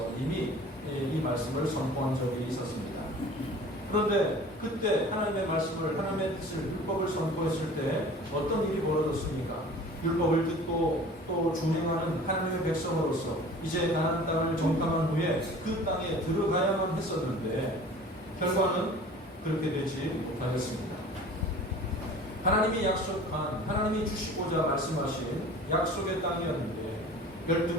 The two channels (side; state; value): both; normal; correlation 0.43